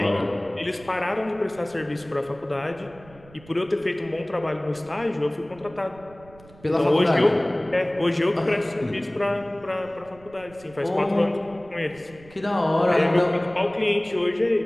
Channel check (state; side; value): noise; right; rumble, 23 dB below the sound